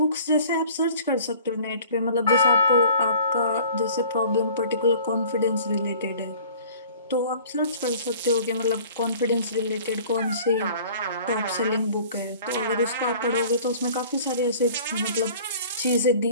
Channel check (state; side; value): inverted; both; correlation -0.48